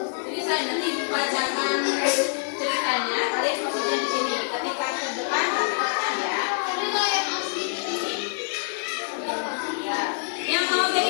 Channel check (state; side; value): silent; right; digital silence